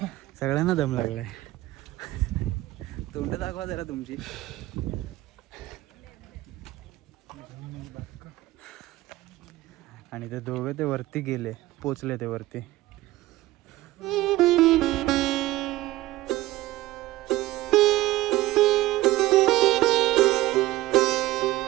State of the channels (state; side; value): quieter; left; 17.3 dB